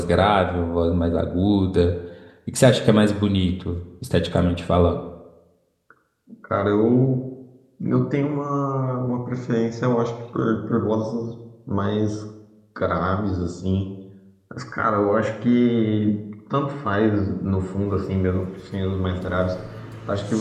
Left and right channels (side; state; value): both; identical; correlation 1.00